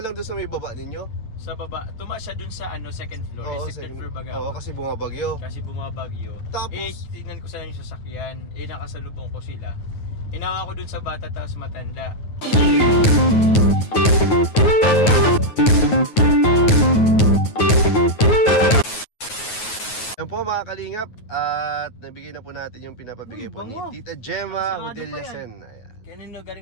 doon sa may baba ninyo? Sa baba, tumaas siya dun sa ano, second floor. Second floor baga. Oo, kasi bumabagyo. Tapos, tingnan ko sana yung sasakyan. Nakasalubong ko sila. Hinawa ko dun sa bata tapos matanda. Yan po mga kalingap. At nabigay na po natin yung pinapabigay po ni Tita Gemma Hodillasen. Kanino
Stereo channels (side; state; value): right; late; 9.4 ms